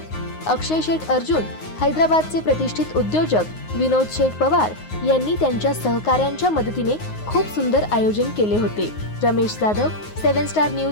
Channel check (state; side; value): late; right; 9.5 ms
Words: अक्षय शेठ अर्जुन, हैदराबादचे प्रतिष्ठित उद्योजक विनोद शेठ पवार यांनी त्यांच्या सहकाऱ्यांच्या मदतीने खूप सुंदर आयोजन केले होते. रमेश जाधव, 7 स्टार